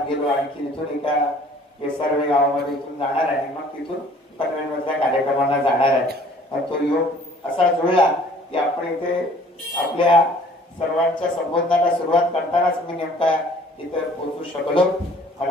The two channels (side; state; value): both; normal; correlation 0.54